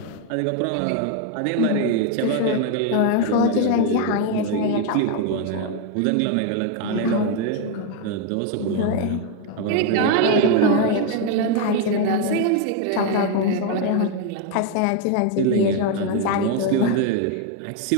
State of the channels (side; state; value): both; different; correlation 0.01